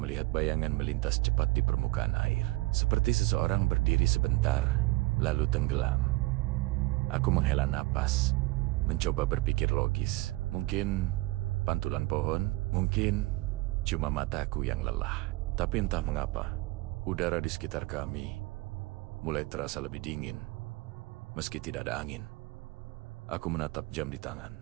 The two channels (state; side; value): quieter; left; 21.4 dB